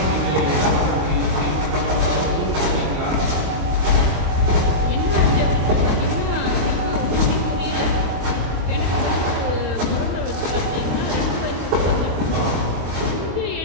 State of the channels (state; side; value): late; left; 26 ms